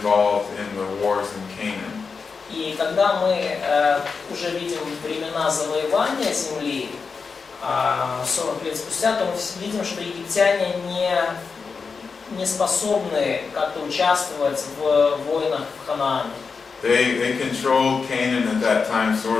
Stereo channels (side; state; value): right; quieter; 5.1 dB